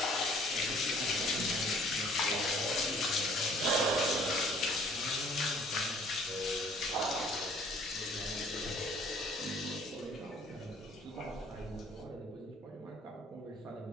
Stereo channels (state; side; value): normal; both; correlation 0.56